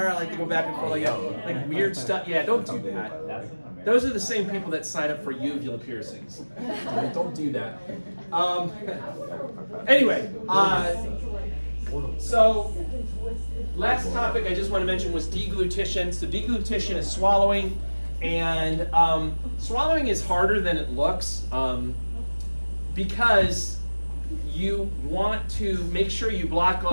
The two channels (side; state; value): both; inverted; correlation -1.00